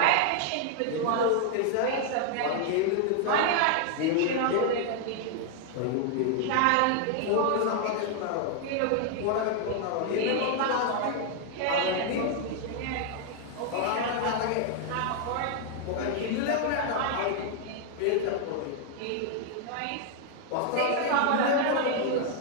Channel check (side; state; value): both; different; correlation 0.00